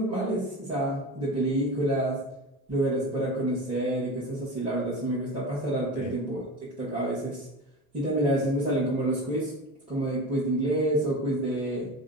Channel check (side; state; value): both; normal; correlation 0.29